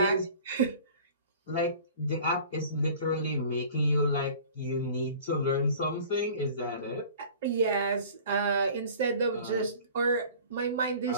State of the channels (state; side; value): inverted; both; correlation -0.45